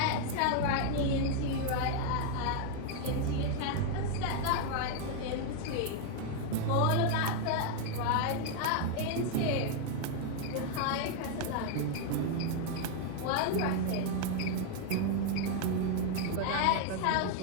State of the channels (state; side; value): different; both; correlation 0.00